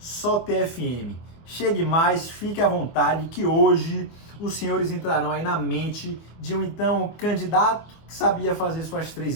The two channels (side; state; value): right; late; 24 ms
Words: TFM. Chegue mais, fique à vontade que hoje os senhores entrarão aí na mente de um então candidato que sabia fazer suas 3